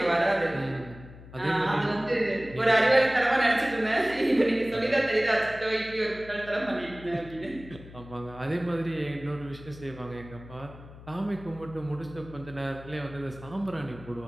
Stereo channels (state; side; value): noise; left; hum, 17 dB below the sound